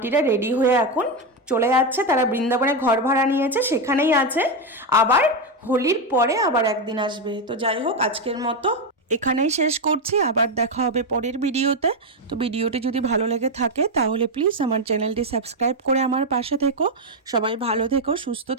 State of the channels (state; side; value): normal; both; correlation 0.07